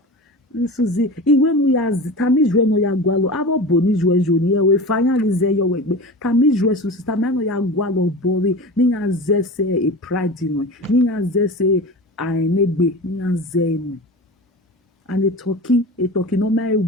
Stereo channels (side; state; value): both; normal; correlation 0.31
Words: Suzy when we are tamiz when we are gwalo abo boni joni we finally say your work tamiz Suzy tamano ya gwalo bori ni ya zese e pride no ni ya zese ainegbe ni ya zenu and a turkey no my